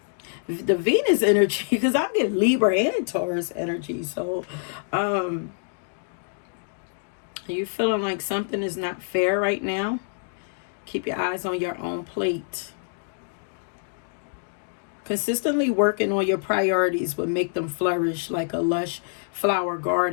The Venus energy, because I'm getting Libra and Taurus energy. So, are you feeling like something is not fair right now? Keep your eyes on your own plate. Consistently working on your priorities will make them flourish like a lush flower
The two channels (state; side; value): silent; right; digital silence